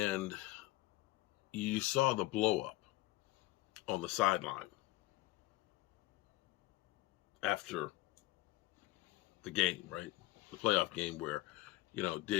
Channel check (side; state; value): right; quieter; 18.1 dB